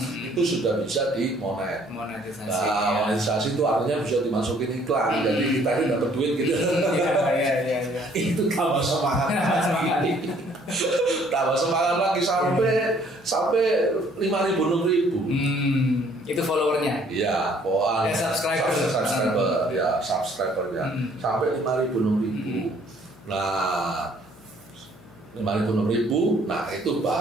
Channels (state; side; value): noise; left; hum, 25 dB below the sound